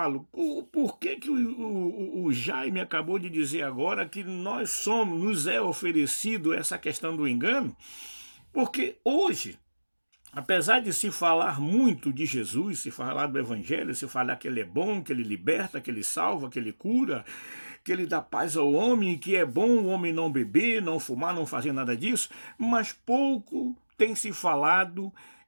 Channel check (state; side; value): inverted; both; correlation -1.00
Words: por que o Jaime acabou de dizer agora que nos é oferecido essa questão do engano? Porque hoje, apesar de se falar muito de Jesus, se falar do Evangelho, se falar que ele é bom, que ele liberta, que ele salva, que ele cura, que ele dá paz ao homem, que é bom o homem não beber, não fumar, não fazer nada disso, mas pouco tem se falado